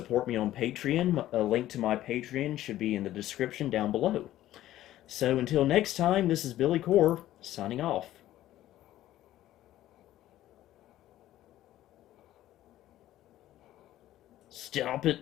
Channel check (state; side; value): quieter; right; 13.9 dB